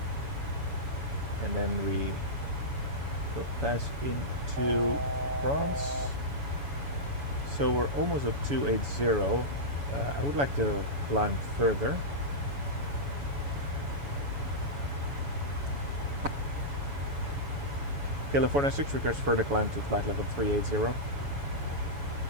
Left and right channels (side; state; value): left; late; 7.1 ms